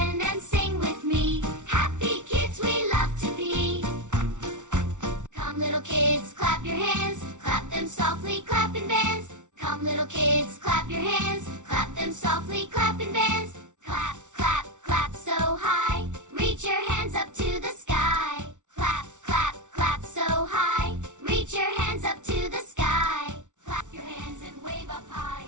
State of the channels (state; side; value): late; left; 0.86 ms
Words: and sing with me. Happy kids we love to be. Come little kids, clap your hands. Clap them softly, clap and dance. Come little kids, clap your hands. Clap them softly, clap and dance. Clap, clap, clap so high. Reach your hands up to the sky. Clap, clap, clap so high. Reach your hands up to the sky. Clap your hands and wave up high.